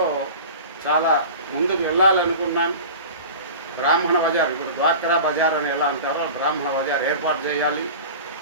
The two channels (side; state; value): both; inverted; correlation -0.36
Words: చాలా ముందుకు వెళ్ళాలనుకున్నాను. బ్రాహ్మణ బజార్, ఇప్పుడు డ్వాక్రా బజార్ అని ఎలా అంటారో బ్రాహ్మణ బజార్ ఏర్పాటు చేయాలి.